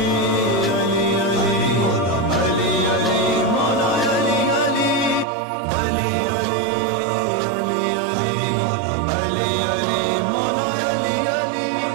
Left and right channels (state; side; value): drops out; left; at 5.2 s